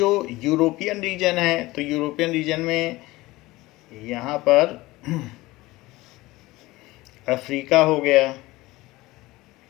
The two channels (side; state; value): right; quieter; 19.6 dB